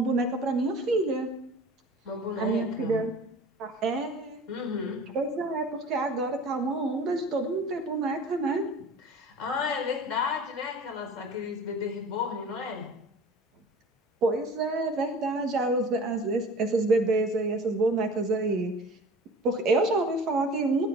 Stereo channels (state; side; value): normal; both; correlation 0.42